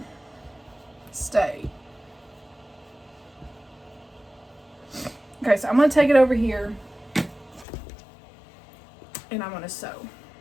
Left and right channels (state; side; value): drops out; right; at 7.7 s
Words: stay. Okay, so I'm going to take it over here and I'm going to sew.